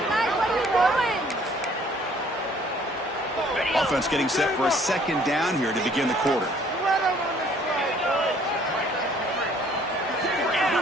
Offense getting set for a 2nd down here to begin the quarter.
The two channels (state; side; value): normal; both; correlation 0.59